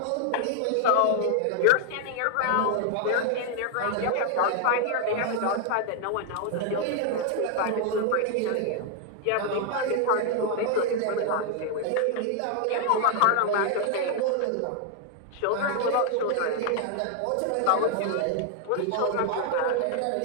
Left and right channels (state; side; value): different; both; correlation 0.00